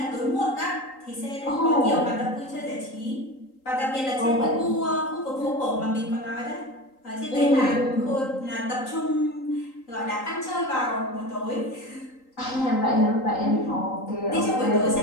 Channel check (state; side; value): late; right; 3.8 ms